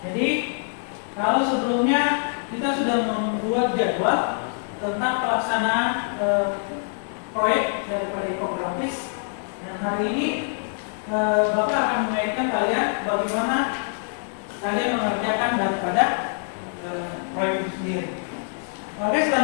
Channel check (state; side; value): silent; right; digital silence